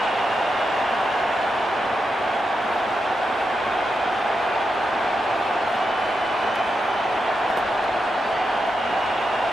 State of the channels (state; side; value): normal; both; correlation 0.86